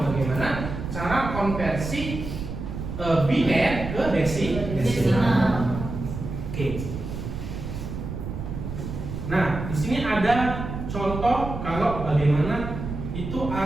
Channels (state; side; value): noise; right; rumble, 6 dB below the sound